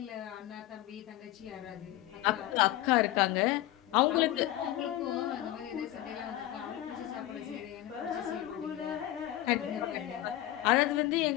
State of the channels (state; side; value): quieter; right; 14.6 dB